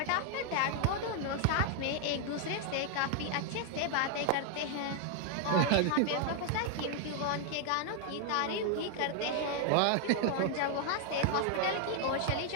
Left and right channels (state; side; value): different; both; correlation 0.00